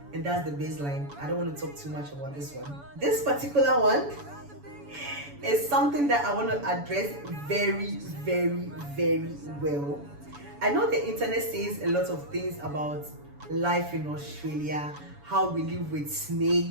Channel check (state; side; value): late; left; 7.0 ms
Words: And that's the baseline. I don't want to talk too much about this one. This particular one is something that I want to address very, very, very well. I know the internet says a lot of things about life in Australia, how we live with